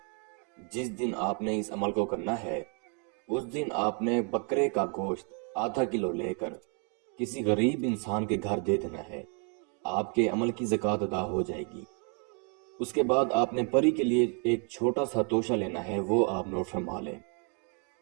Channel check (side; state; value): left; quieter; 39.4 dB